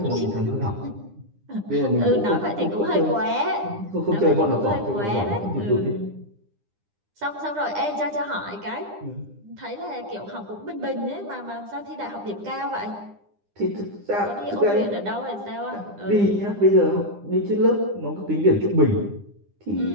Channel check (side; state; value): left; late; 9.9 ms